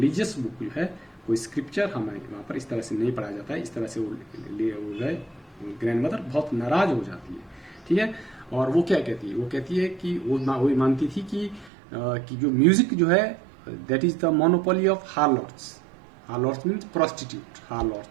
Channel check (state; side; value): drops out; left; at 11.7 s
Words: बुक जो है, कोई स्क्रिप्चर हमें वहाँ पर इस तरह से नहीं पढ़ाया जाता है, इस तरह से वो जो है ग्रैंड मदर बहुत नाराज हो जाती है। ठीक है। और वो क्या कहती है, वो कहती है कि वो मानती थी कि जो म्यूजिक जो है that is the monopoly of harlots. Harlots means prostitute,